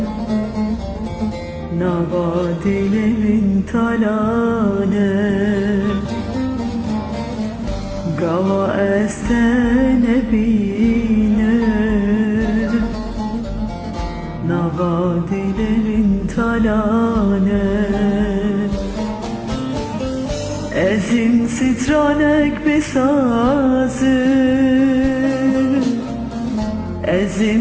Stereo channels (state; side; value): identical; both; correlation 1.00